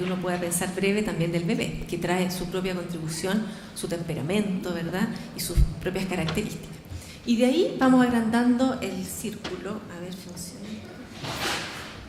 uno pueda pensar breve, también del bebé, que trae su propia contribución, su temperamento, ¿verdad?, y sus propias características. Y de ahí vamos agrandando el círculo, a ver, funciona,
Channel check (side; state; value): both; identical; correlation 1.00